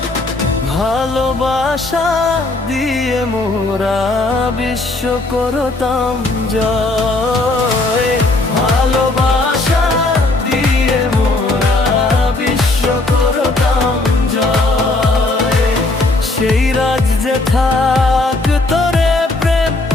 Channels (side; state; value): right; quieter; 3.0 dB